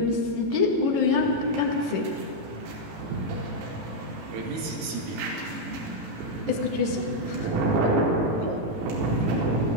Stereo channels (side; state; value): left; late; 18 ms